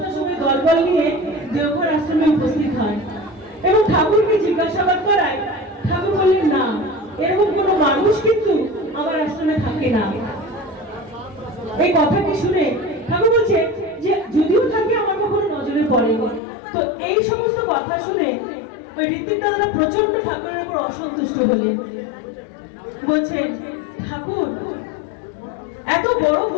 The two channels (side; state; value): right; drops out; at 16.4 s